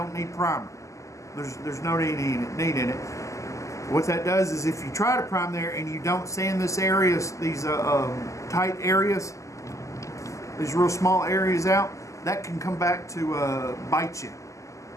need primer. There's no need in it. What that does is if you try to prime there and you don't sand this areas, these tight areas, these real small areas out, that can come back to bite you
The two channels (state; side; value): late; right; 0.16 ms